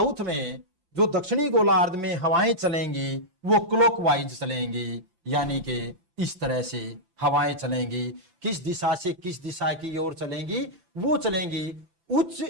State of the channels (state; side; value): late; left; 5.8 ms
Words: में, जो दक्षिणी गोलार्ध में हवाएं चलेंगी वो क्लॉकवाइज चलेंगी, यानी कि इस तरह से हवाएं चलेंगी। किस दिशा से किस दिशा की ओर चलेंगी? वो चलेंगी उच्च